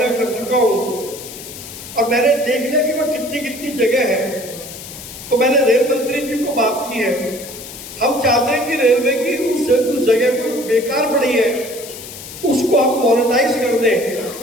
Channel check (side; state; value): left; noise; hiss, 13 dB below the sound